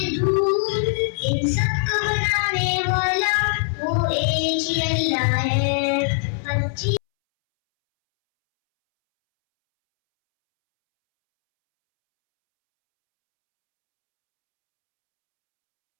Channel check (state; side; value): silent; right; 65 dB below the other